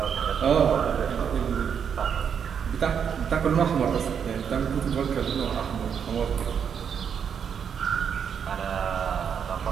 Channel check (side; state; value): left; quieter; 7.5 dB